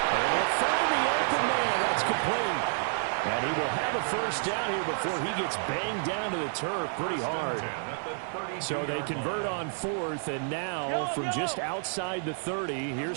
And we'll find the open man. That's complete. And he will have a first down here before he gets banged down to the turf pretty hard. So they convert on 4th, and now from just outside the 30,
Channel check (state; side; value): silent; left; digital silence